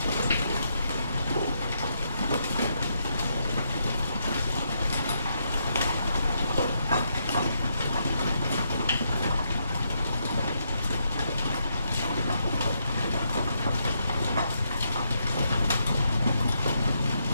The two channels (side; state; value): both; inverted; correlation -0.78